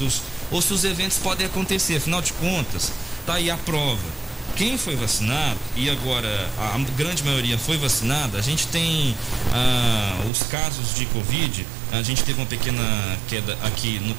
ou se os eventos podem acontecer, afinal de contas, tá aí a prova. Quem foi vacinado, e agora a grande maioria foi vacinada, a gente tem os casos de Covid, a gente teve uma pequena queda aqui no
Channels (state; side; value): drops out; left; at 10.3 s